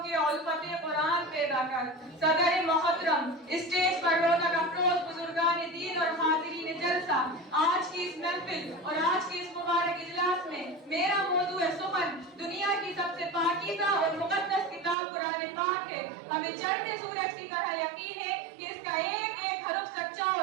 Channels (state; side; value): drops out; left; at 15.0 s